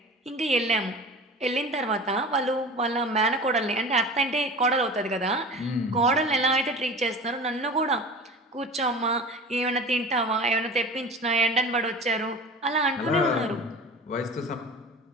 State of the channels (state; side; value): normal; both; correlation 0.36